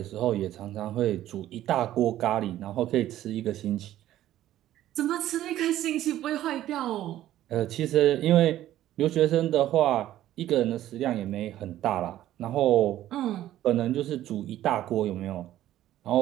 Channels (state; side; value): quieter; left; 13.3 dB